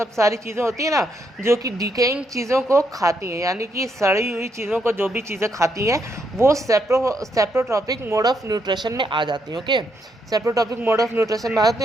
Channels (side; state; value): both; normal; correlation 0.78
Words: सारी चीज़ें होती हैं ना, जो कि डिकेइंग चीज़ों को खाती हैं, यानी कि सड़ी हुई चीज़ों को जो भी चीज़ें खाती हैं, वो सेप्रोट्रॉपिक मोड ऑफ न्यूट्रिशन में आ जाती हैं। Okay, saprotrophic mode of nutrition में आ जाते